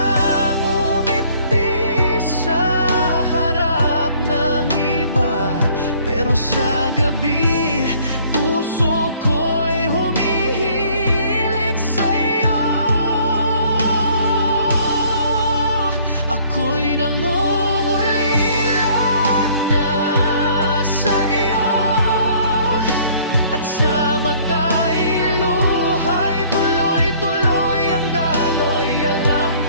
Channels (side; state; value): both; inverted; correlation -0.58